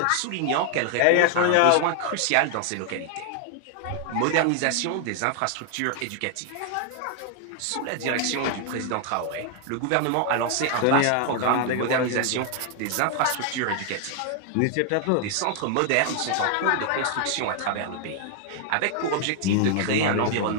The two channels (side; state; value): both; different; correlation 0.00